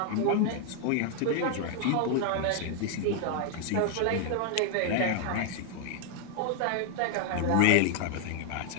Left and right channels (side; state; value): both; different; correlation 0.00